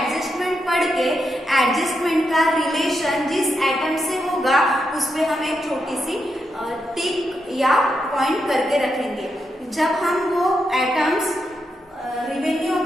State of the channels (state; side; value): normal; both; correlation 0.84